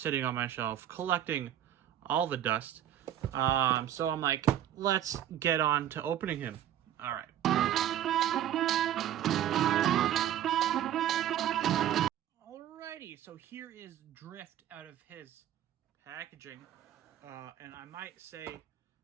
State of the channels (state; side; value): quieter; left; 11.3 dB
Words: on my shelf, collecting all the dust. So I'm like, let's get on to opening him. All right. Alrighty, so here is Drift out of his packaging. And I might say